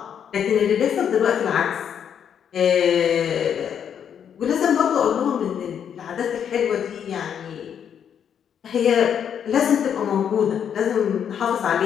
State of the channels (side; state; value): right; quieter; 8.4 dB